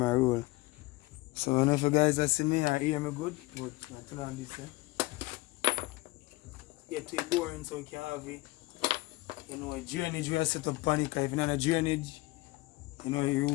roll. So when if you guys that see me, I hear me good, but I turn on this, get too boring so we can have it. A drainage we set up on it, cause if you're not a drainage, you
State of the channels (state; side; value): quieter; right; 21.2 dB